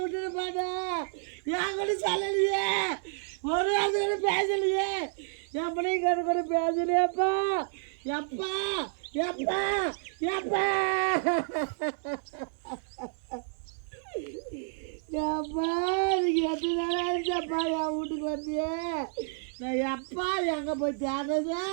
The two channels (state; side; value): silent; left; digital silence